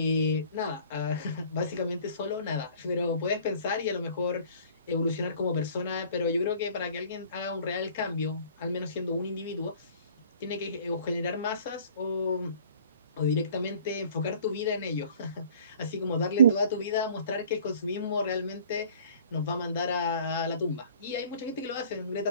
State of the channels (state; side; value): inverted; both; correlation -0.51